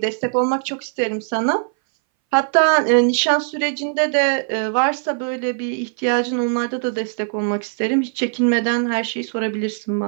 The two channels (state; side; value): silent; left; 62 dB below the other